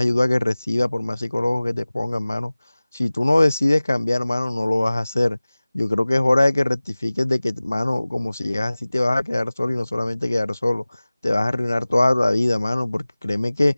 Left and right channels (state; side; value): inverted; both; correlation -0.99